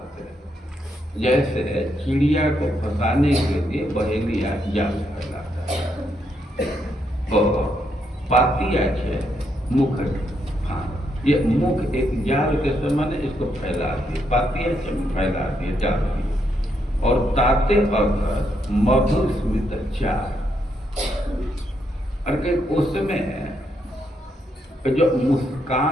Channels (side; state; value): both; normal; correlation 0.78